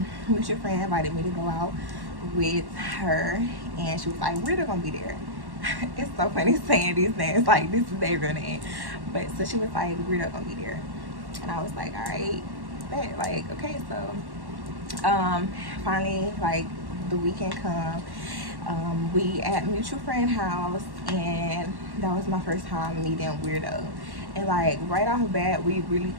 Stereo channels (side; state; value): left; late; 1.1 ms